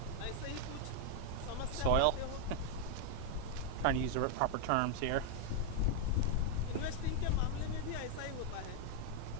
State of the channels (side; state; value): both; different; correlation 0.00